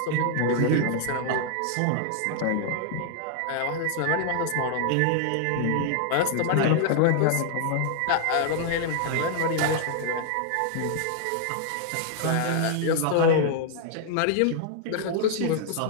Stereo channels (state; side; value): different; both; correlation 0.00